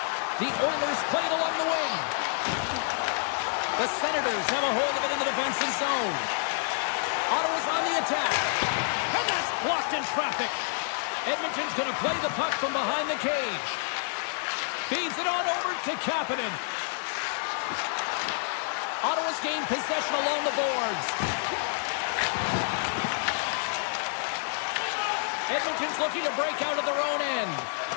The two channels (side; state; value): right; silent; 59 dB below the other